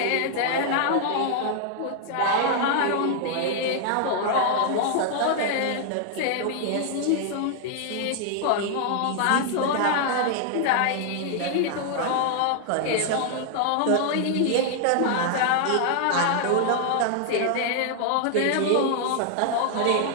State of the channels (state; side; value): different; both; correlation 0.00